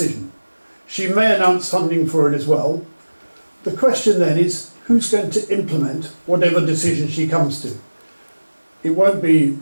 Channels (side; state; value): both; inverted; correlation -1.00